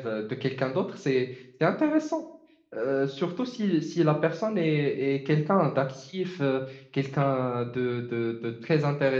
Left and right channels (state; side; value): identical; both; correlation 1.00